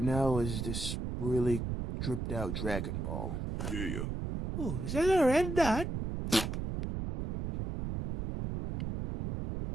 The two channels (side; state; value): right; noise; rumble, 3 dB below the sound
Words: now is this really dripped out Dragon Ball. Yeah. Oh, is that a red dot?